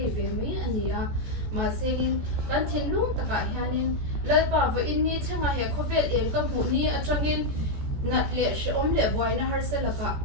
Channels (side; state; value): left; late; 14 ms